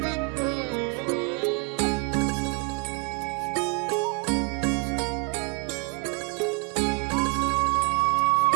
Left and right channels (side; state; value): left; quieter; 36.3 dB